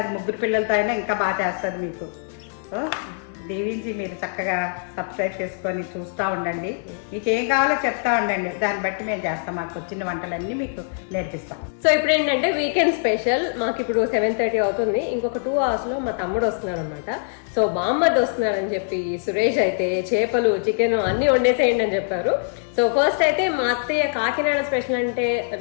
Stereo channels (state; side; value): silent; right; digital silence